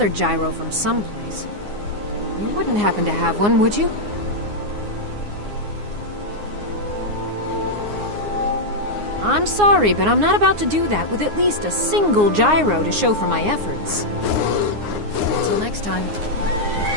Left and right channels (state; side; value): late; left; 9.7 ms